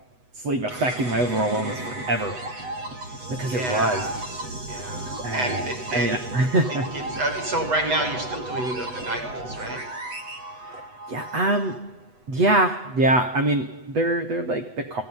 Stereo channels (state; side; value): late; left; 8.0 ms